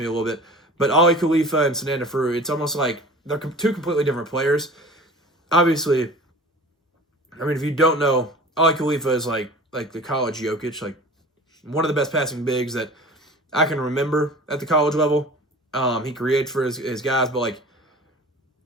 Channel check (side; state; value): both; normal; correlation 0.41